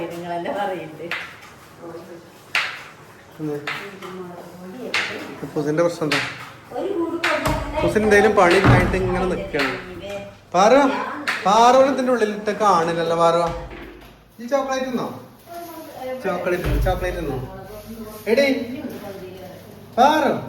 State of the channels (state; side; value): identical; both; correlation 1.00